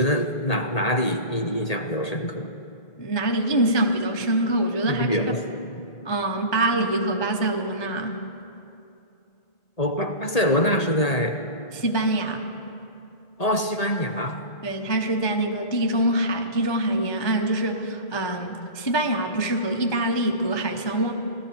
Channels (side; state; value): right; late; 1.8 ms